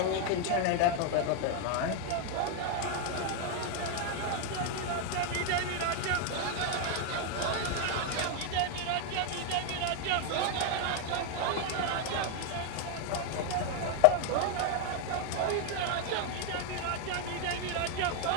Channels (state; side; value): different; both; correlation 0.01